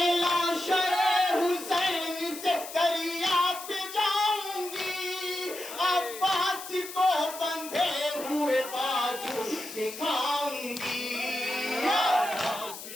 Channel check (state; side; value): noise; left; hiss, 11 dB below the sound